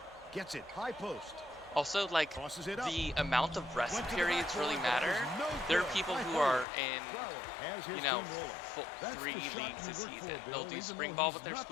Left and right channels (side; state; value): right; drops out; at 6.7 s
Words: gets it high post. Also, like, Tosses it up. the amount of rest Went to the periods backboard, really but it matter. was no There are good. people High who forward. are in, Brower has his you know, team rolling. That's 3 the shot leagues you this work season. for, They'll Bill, do even spring though ball he's with their not